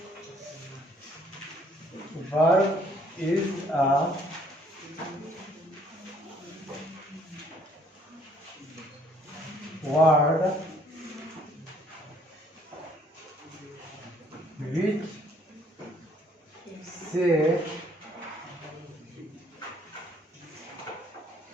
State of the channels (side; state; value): both; normal; correlation 0.63